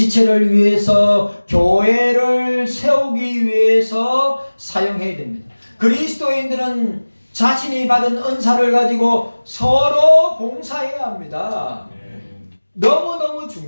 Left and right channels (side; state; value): both; inverted; correlation -1.00